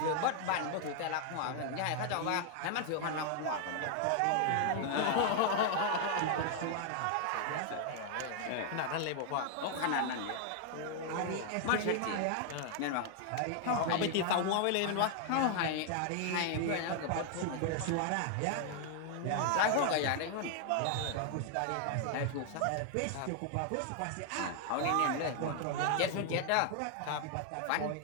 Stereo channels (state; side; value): different; both; correlation 0.00